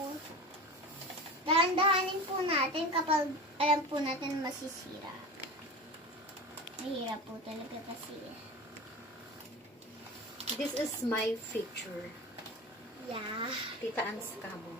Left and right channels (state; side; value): normal; both; correlation 0.30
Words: dahan-dahanin po natin kapag alam po natin masisira. Mahirap po talaga kasi. This is my feature. Yeah. Tita An's Camo.